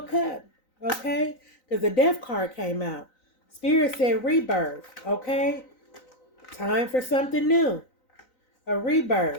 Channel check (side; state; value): right; late; 3.9 ms